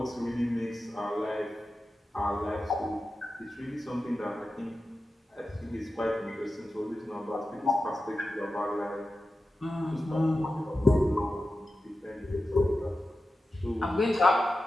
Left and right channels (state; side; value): normal; both; correlation 0.92